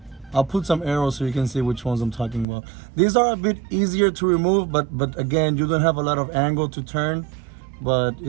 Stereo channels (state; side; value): drops out; left; at 2.5 s